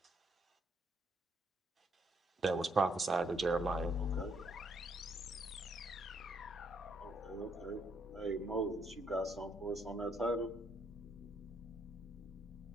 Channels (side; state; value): both; normal; correlation 0.72